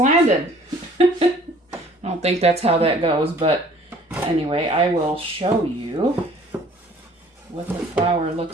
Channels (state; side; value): normal; both; correlation 0.53